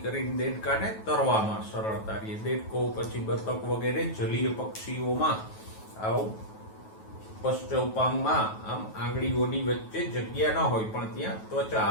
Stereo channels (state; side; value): late; right; 9.3 ms